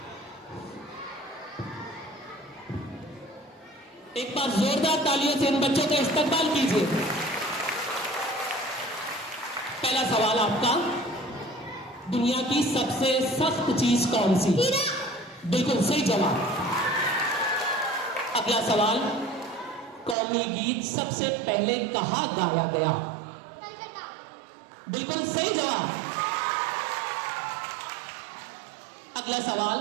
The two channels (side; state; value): left; drops out; at 20.2 s